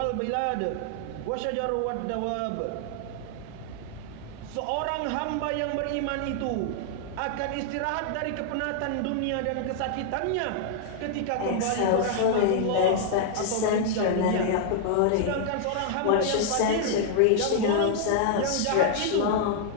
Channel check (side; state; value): both; different; correlation 0.00